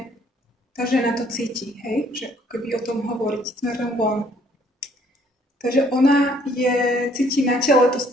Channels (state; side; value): normal; both; correlation 0.62